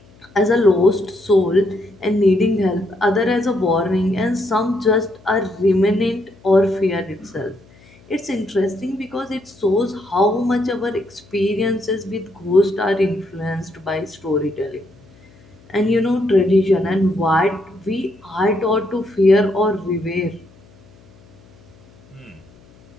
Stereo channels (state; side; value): noise; left; hum, 27 dB below the sound